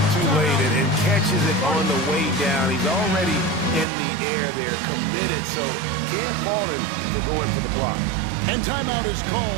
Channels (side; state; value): left; drops out; at 3.9 s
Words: too late and catches it on the way down. He's already in the air there, committed, so can't fault him for going for the block. And timeout is